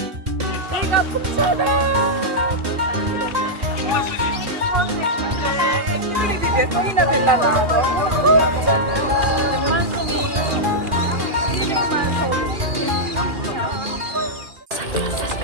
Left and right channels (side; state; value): left; late; 2.4 ms